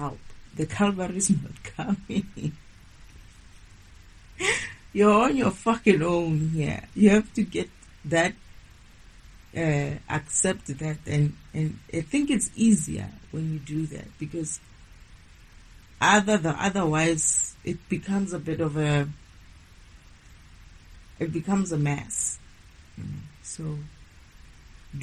The Calvary is not coming. You're on your fucking own here. You have to get that, accept that, and I think it's easier when you do that because otherwise it becomes a bit of it becomes a mess. So,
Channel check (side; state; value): both; identical; correlation 1.00